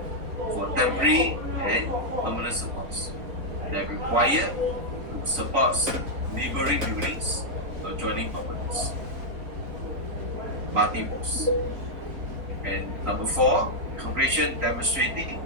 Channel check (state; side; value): late; left; 3.6 ms